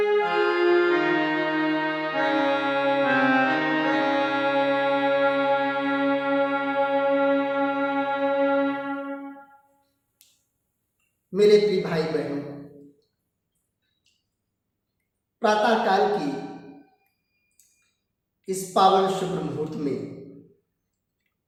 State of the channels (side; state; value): both; identical; correlation 1.00